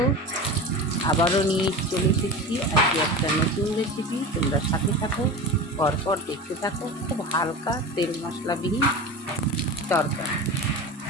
আবারও নিয়ে চলে এসেছি আজকে একটা নতুন রেসিপি। তোমরা সাথে থাকো, পরপর দেখতে থাকো। খুব হালকা তেল মশলাবিহীন তরকারি।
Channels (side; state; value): both; normal; correlation 0.29